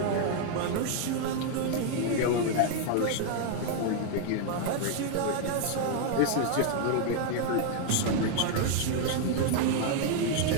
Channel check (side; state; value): both; different; correlation 0.00